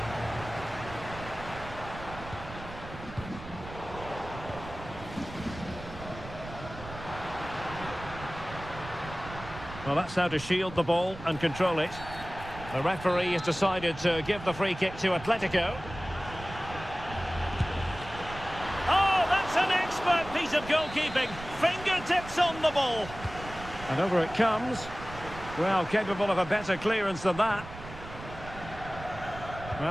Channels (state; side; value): noise; right; rumble, 13 dB below the sound